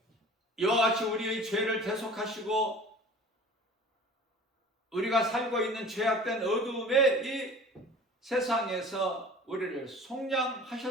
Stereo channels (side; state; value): both; normal; correlation 0.43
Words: 이와 같이 우리의 죄를 대속하시고 우리가 살고 있는 죄악된 어두움의 이 세상에서 우리를